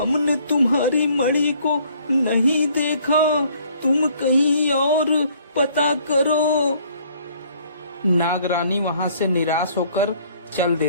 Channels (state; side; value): inverted; both; correlation -0.61